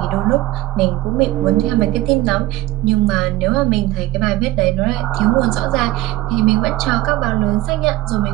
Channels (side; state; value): left; quieter; 16.7 dB